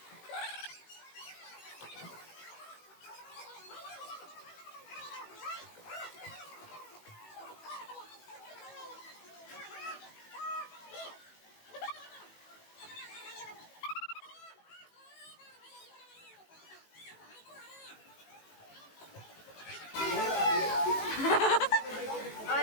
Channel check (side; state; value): right; late; 18 ms